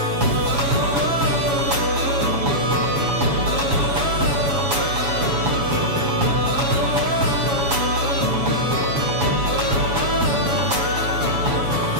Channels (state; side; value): late; left; 7.1 ms